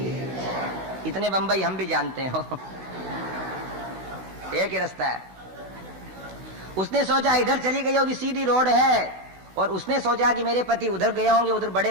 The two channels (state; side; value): late; left; 16 ms